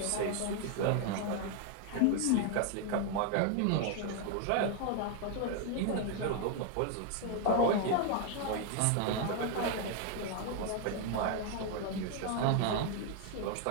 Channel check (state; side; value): different; both; correlation 0.00